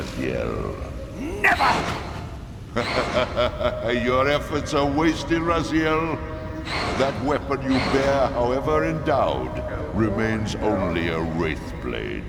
Never! Your efforts are wasted, Raziel. That weapon you bear, however endowed, remains only a wraith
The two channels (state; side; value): identical; both; correlation 1.00